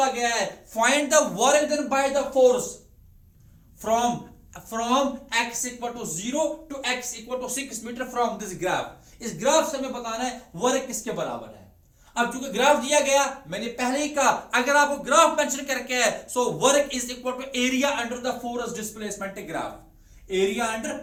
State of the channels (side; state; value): both; identical; correlation 1.00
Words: गया है find the work done by the force from x equal to 0 to x equal to 6 metre from this graph. इस ग्राफ से हमें बताना है वर्क किसके बराबर है। अब चूंकि ग्राफ दिया गया, मैंने पहले ही कहा अगर आपको ग्राफ मेंशन करके है, so work is equal to area under the force displacement graph, area under